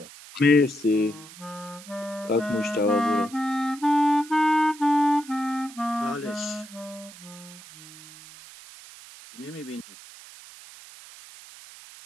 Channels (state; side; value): noise; right; hiss, 18 dB below the sound